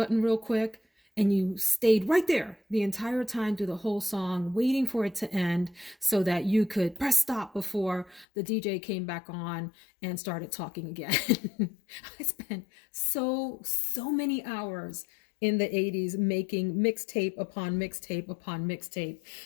real quick. And you stayed right there the entire time through the whole song, waiting for it to end so that you could press stop before the DJ came back on and started talking again. I spent so many hours in the 80s making mixtape upon mixtape upon mixtape.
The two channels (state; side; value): drops out; right; at 8.2 s